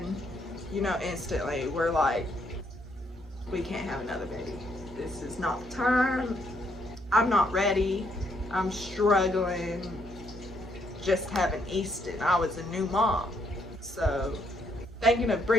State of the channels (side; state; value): both; normal; correlation 0.72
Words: you know, instantly we're like, we can't have another baby. This is not the time. I'm not ready. I'm struggling just having Easton. I was a new mom. So thinking of